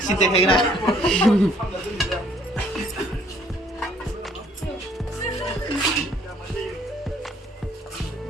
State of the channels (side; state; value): both; normal; correlation 0.61